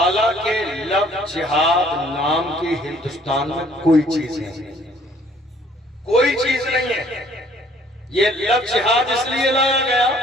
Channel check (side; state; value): both; normal; correlation 0.59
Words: لفظ جہاد نام کی ہندوستان میں کوئی چیز نہیں، کوئی چیز نہیں ہے۔ یہ لفظ جہاد اس لیے لایا گیا